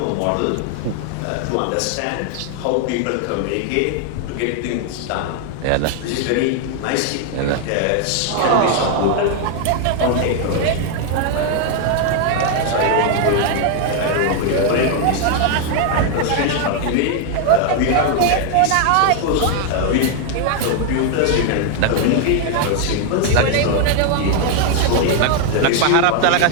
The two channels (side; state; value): both; different; correlation 0.00